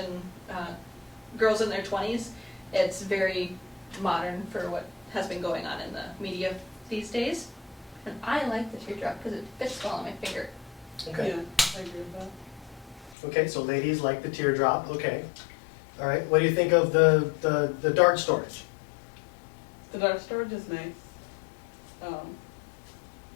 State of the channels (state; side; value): drops out; right; at 13.2 s